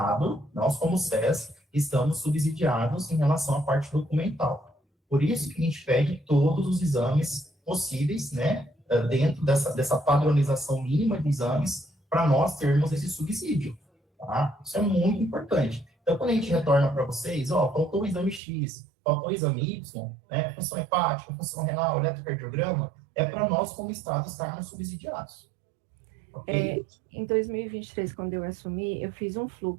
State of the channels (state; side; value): drops out; left; at 18.4 s